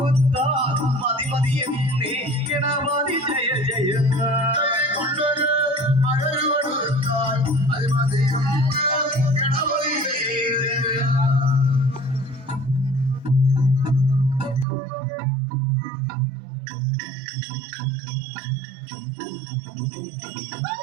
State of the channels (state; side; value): drops out; left; at 14.7 s